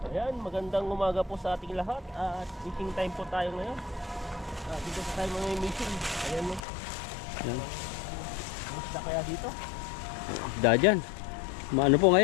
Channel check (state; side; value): drops out; right; at 6.6 s